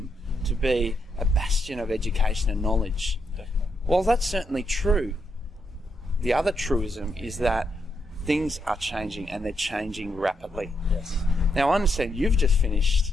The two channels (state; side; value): normal; both; correlation 0.80